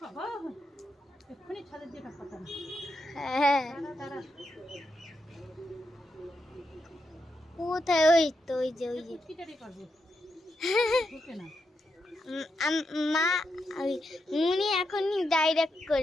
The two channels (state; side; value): normal; both; correlation 0.84